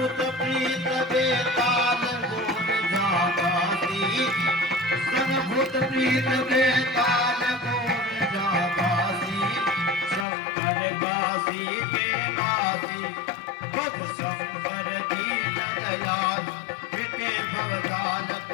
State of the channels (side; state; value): right; drops out; at 10.2 s